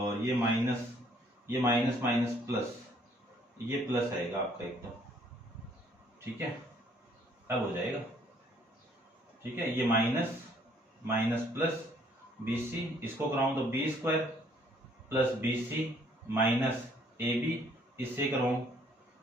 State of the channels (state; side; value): normal; both; correlation 0.63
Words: ये माइनस माइनस प्लस, ये प्लस आएगा आपका एकदम, ठीक है, अब हो जाएगा, ठीक है। ये minus minus plus B C, इसको कराऊं तो B square plus B C minus A B, इससे कराऊं